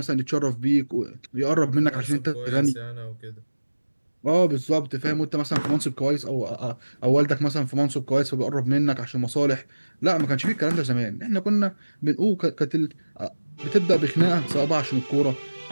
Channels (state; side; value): inverted; both; correlation -1.00